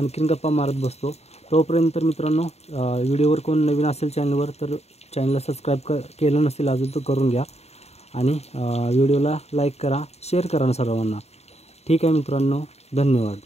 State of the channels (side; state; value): right; late; 0.31 ms